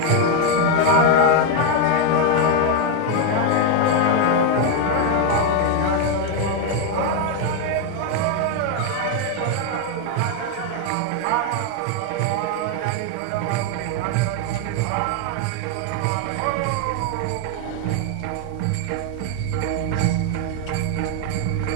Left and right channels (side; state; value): both; different; correlation 0.01